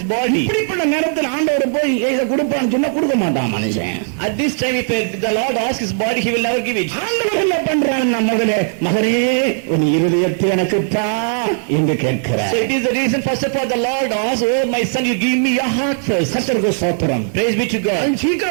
body. இப்படிப்பட்ட நேரத்தில் ஆண்டவர் போய் இதை கொடுப்பான்னு சொன்னா கொடுக்க மாட்டான் மனுஷன். At this time, if the Lord asks his body, he will never give it. ஆண்டவர் என்ன பண்றான்? மகனே மகனே உன் இருதயத்தை எனக்கு தா என்று கேட்கிறார். So it is the reason, first of all, the Lord asks, oh my son, you give me your heart first. கர்த்தருக்கு ஸ்தோத்திரம். Praise be to God.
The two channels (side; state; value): left; silent; digital silence